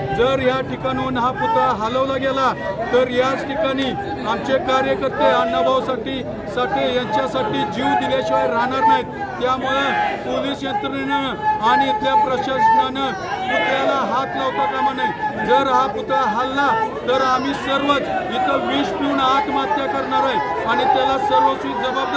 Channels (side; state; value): both; identical; correlation 1.00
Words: जर या ठिकाणाहून हा पुतळा हलवला गेला तर याच ठिकाणी आमचे कार्यकर्ते अण्णाभाऊ साठे यांच्यासाठी जीव दिल्याशिवाय राहणार नाहीत। त्यामुळे पोलीस यंत्रणेनं आणि इथल्या प्रशासनानं पुतळ्याला हात लावता कामा नये। जर हा पुतळा हल्ला तर आम्ही सर्वच इथं विष पिऊन आत्महत्या करणार आहे आणि त्याला सर्वस्वी